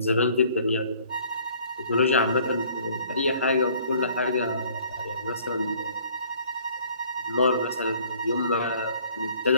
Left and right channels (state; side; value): inverted; both; correlation -0.56